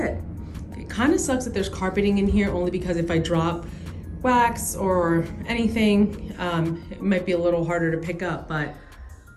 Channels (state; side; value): identical; both; correlation 1.00